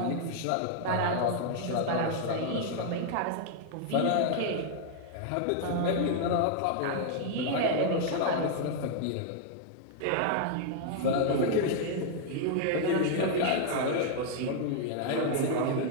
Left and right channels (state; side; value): different; both; correlation 0.00